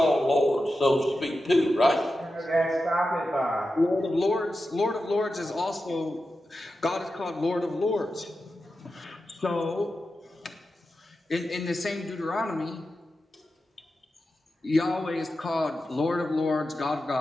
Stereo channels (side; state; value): both; normal; correlation 0.91